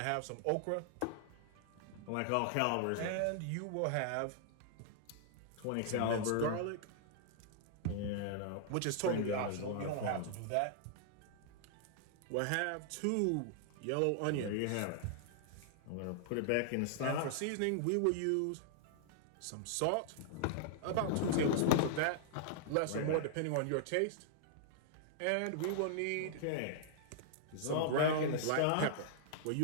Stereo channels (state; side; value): different; both; correlation -0.01